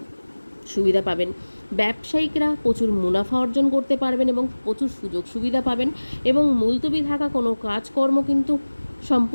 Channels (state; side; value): inverted; both; correlation -1.00